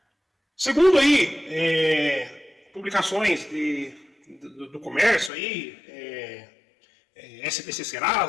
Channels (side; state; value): right; drops out; at 5.3 s